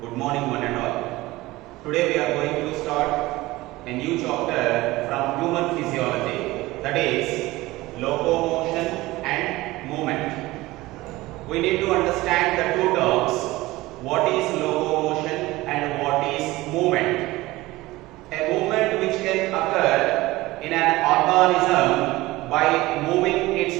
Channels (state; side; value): quieter; left; 19.1 dB